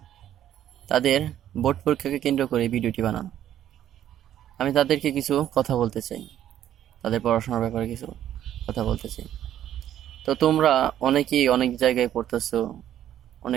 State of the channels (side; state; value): left; quieter; 11.3 dB